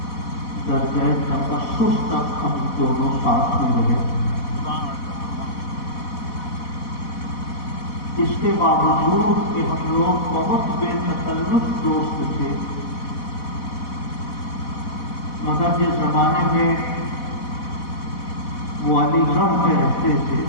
درجہ تخصص تک ہم دونوں ساتھ میں رہے۔ اس کے باوجود کہ ہم لوگ بہت بے تکلف دوست تھے، مگر جس زمانے میں وہ علی گڑھ میں رہتے تھے،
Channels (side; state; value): right; late; 4.1 ms